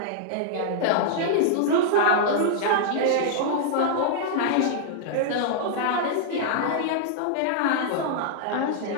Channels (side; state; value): both; different; correlation -0.02